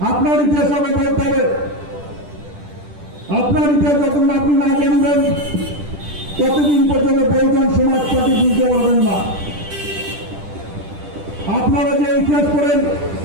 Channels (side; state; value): left; late; 10 ms